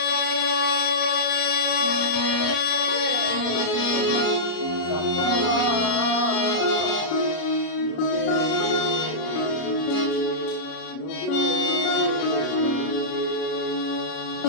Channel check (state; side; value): late; right; 33 ms